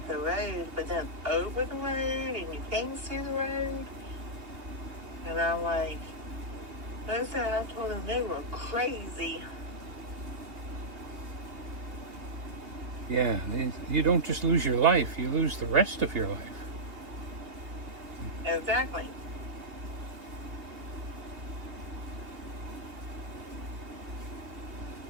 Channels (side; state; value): left; late; 2.8 ms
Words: the road, but then over the road, and you can't see the road. And I'm like, I told them they were crazy. Yeah, you don't just lose your life, you lose the rest of your life. Exactly.